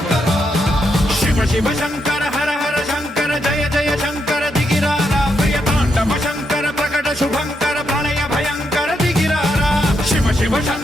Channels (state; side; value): normal; both; correlation 0.80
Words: శివ శివ శంకర హర హర శంకర జయ జయ శంకర దిగిరారా ప్రియ తాండవ శంకర ప్రకట శుభంకర ప్రళయ భయంకర దిగిరారా శివ శివ